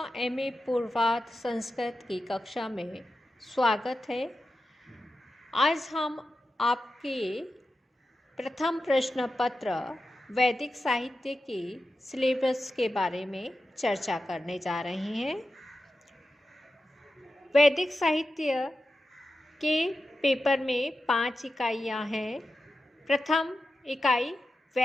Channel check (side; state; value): both; normal; correlation 0.91